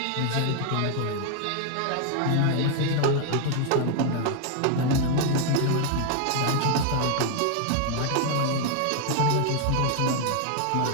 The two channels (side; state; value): both; different; correlation 0.00